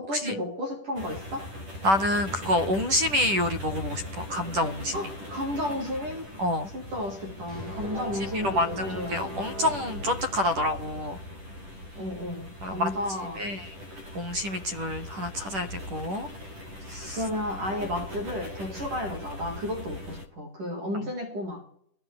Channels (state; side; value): late; left; 10 ms